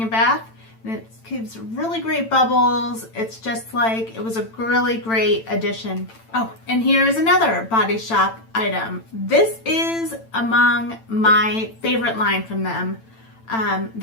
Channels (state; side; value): late; right; 8.9 ms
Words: a bath, and it gives really great bubbles. It's just like, it was a really great addition. Oh, and here's another Body Shop item. This is among my favorite line from them.